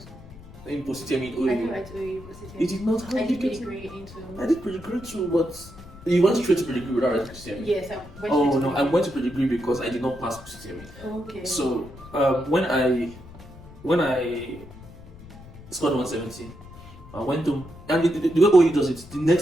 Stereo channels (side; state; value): left; noise; rumble, 18 dB below the sound